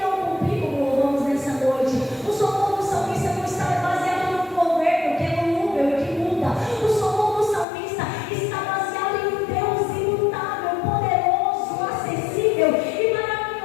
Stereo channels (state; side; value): drops out; right; at 7.7 s